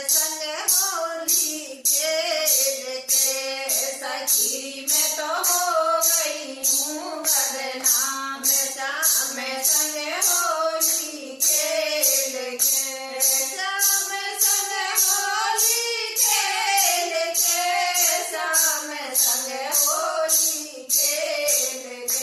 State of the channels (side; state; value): both; identical; correlation 1.00